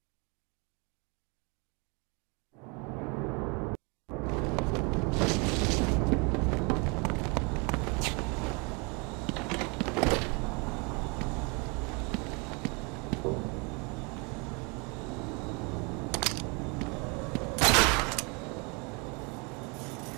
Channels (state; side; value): quieter; left; 31.3 dB